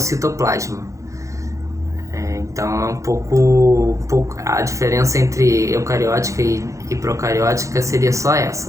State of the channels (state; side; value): late; left; 0.15 ms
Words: Então é um pouco a diferença entre eucariótica e procariótica seria só